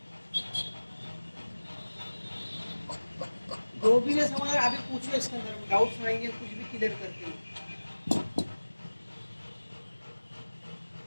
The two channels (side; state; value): both; inverted; correlation -1.00